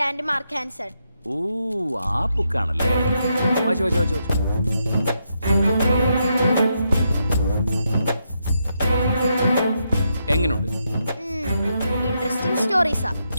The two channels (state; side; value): inverted; both; correlation -0.81